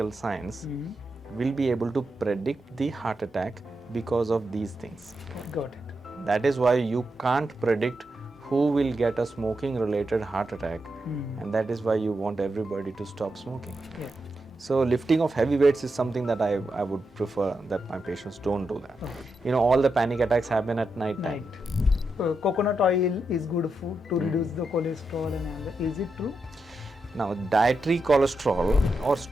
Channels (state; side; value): normal; both; correlation 0.86